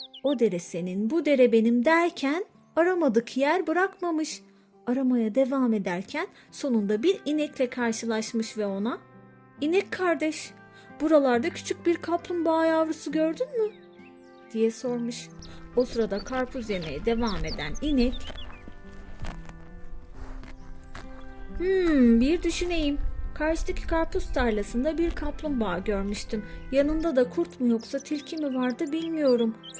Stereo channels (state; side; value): identical; both; correlation 1.00